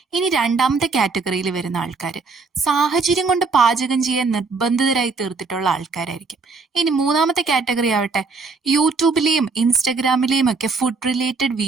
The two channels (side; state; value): left; quieter; 4.3 dB